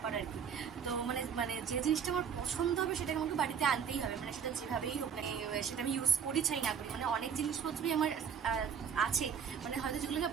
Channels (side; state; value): left; quieter; 7.3 dB